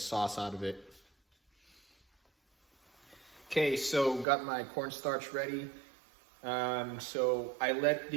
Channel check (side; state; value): left; drops out; at 4.2 s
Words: out of it. Okay, so got my cornstarch ready. So I let